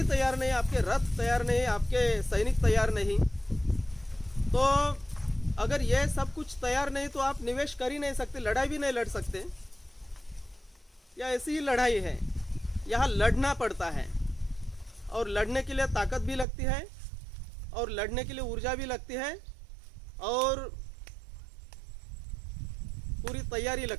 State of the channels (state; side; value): drops out; left; at 16.4 s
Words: तैयार नहीं, आपके रथ तैयार नहीं, आपके सैनिक तैयार नहीं, तो अगर ये सब कुछ तैयार नहीं तो आप निवेश कर ही नहीं सकते, लड़ाई भी नहीं लड़ सकते। या ऐसी ही लड़ाई है, यहाँ लड़ना पड़ता है और लड़ने के लिए ताकत भी लगती है और लड़ने के लिए ऊर्जा भी लगती है और पूरी तैयारी